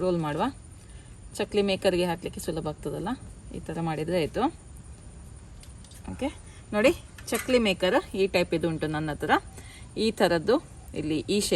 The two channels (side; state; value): both; identical; correlation 1.00